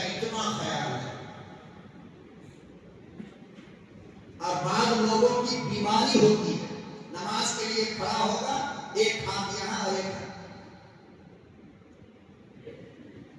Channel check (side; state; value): both; identical; correlation 1.00